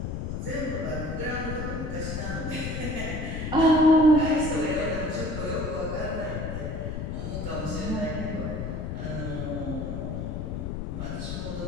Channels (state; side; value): noise; left; rumble, 4 dB below the sound